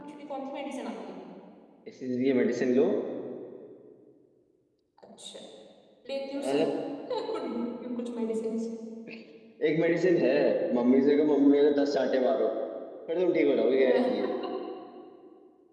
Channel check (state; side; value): identical; both; correlation 1.00